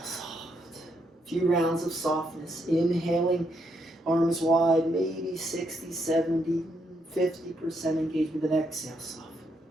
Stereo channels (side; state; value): both; normal; correlation 0.77